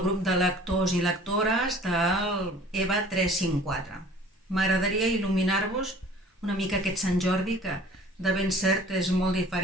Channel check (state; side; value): normal; both; correlation 0.49